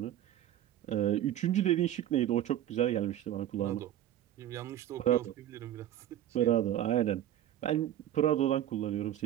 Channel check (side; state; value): left; quieter; 11.9 dB